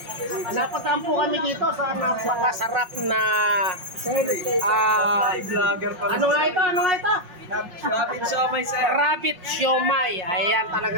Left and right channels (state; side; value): late; left; 5.5 ms